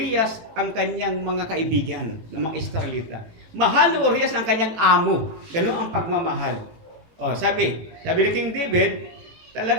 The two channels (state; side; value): late; left; 18 ms